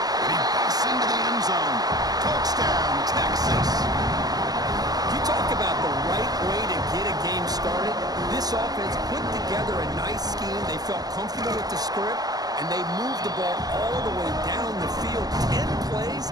And he busts into the end zone. Touchdown, Texas. You talk about the right way to get a game started. This offense put together a nice scheme. They felt comfortable with the script, and they moved the ball all the way down the field. 10 plays,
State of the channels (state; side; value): late; left; 0.19 ms